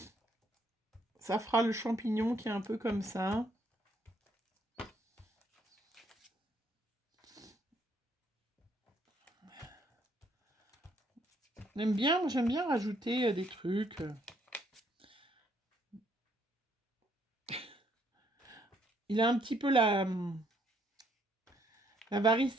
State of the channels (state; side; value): normal; both; correlation 0.69